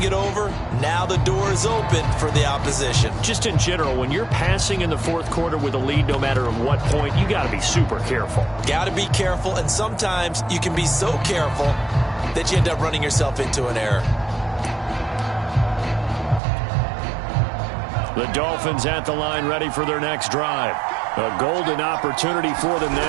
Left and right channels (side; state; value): left; drops out; at 16.4 s